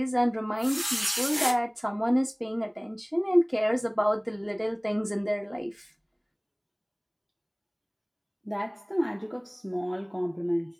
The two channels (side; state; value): both; identical; correlation 1.00